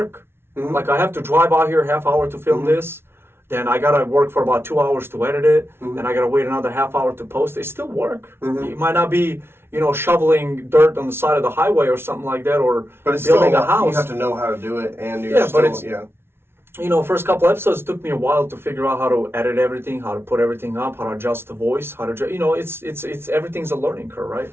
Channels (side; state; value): left; late; 0.12 ms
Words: Like I have to drive out here half hour to film this. Then I gotta work for about 2 hours to edit it. Then I gotta wait another half hour to post it. It's still work. It might not be, shoveling dirt on the side of the highway or something like that, or but it's building still, a house. You have to know how to do it, and First couple episodes took me a while to figure out how to edit everything, how to put everything up, how to adjust the voice, it's everything's a learning curve, right?